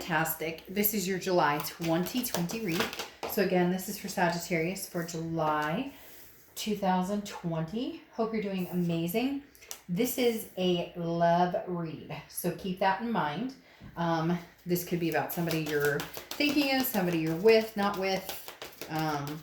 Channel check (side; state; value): both; identical; correlation 1.00